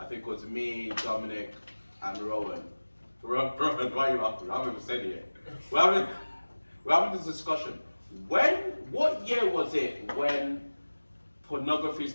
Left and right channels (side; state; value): both; inverted; correlation -1.00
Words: think it was me, Dominic, and Rowan. Rowan, why are you after? I haven't even said it yet. We're having this discussion. What year was it when pornography